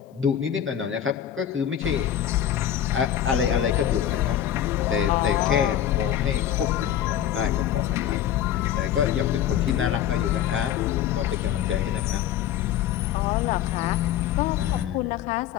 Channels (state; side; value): quieter; right; 10.5 dB